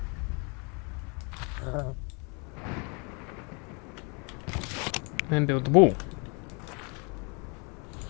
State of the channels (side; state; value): right; quieter; 33.2 dB